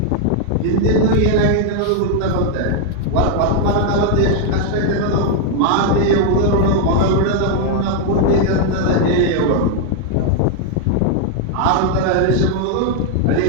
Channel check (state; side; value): different; both; correlation 0.00